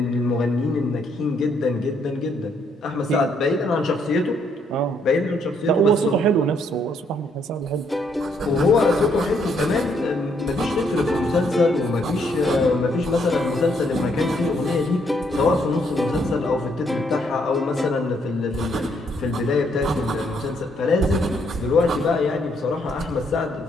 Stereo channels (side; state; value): both; normal; correlation 0.72